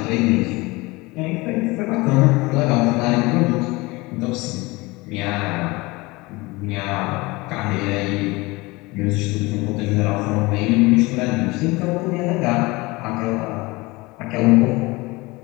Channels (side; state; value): right; quieter; 23.1 dB